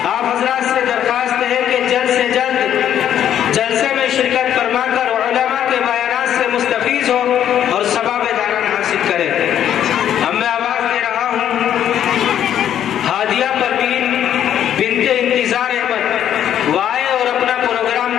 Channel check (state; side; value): quieter; right; 10.2 dB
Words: آپ حضرات سے درخواست ہے کہ جلد سے جلد جلسے میں شرکت فرما کر علماء کے بیانات سے مستفیض ہو اور ثواب داران حاصل کرے۔ اب میں آواز دے رہا ہوں ہادیہ پروین بنت انتظار احمد، وہ آئے اور اپنا پروگرام